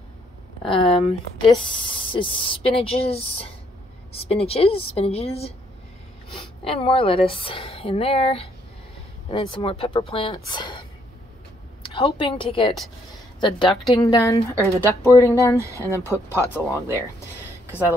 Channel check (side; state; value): both; normal; correlation 0.70